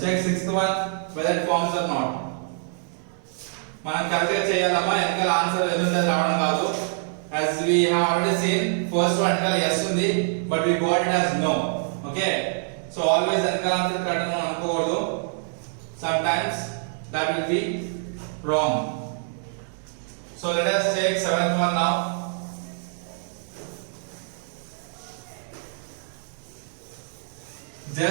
Check sixth one whether it forms or not. మనం correct గా చేయాలమ్మా, వెనకాల answer ఎదురుంది రావడం కాదు. As we have already seen, first one వెనకాల yes ఉంది, but we got it as no. Okay, so always వెనకాల answer correct అని అనుకోకూడదు. Sometimes that will be wrong. So let us take seventh one now.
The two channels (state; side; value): silent; left; digital silence